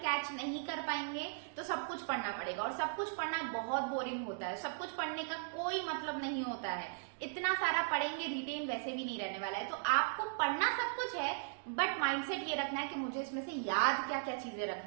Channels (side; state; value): left; silent; digital silence